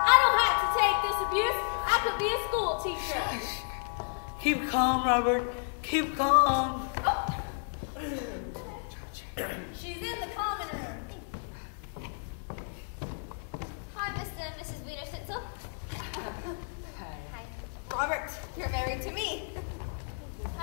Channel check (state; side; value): silent; right; 57 dB below the other